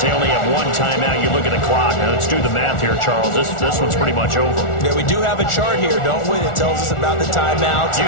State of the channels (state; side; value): late; right; 1.4 ms